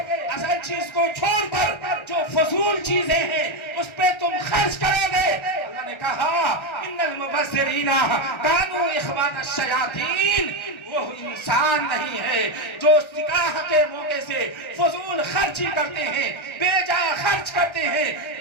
اصل چیز کو چھوڑ کر جو فضول چیزیں ہیں اس پہ تم خرچ کرو گے۔ اللہ نے کہا ان المبذرین کانوا اخوان الشیاطین، وہ انسان نہیں ہے جو نکاح کے موقع سے فضول خرچی کرتے ہیں، بے جا خرچ کرتے ہیں،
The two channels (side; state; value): right; late; 1.3 ms